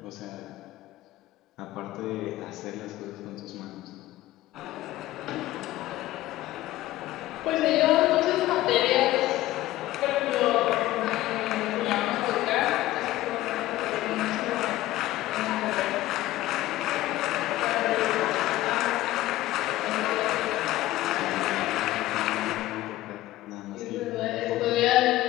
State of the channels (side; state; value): right; quieter; 16.0 dB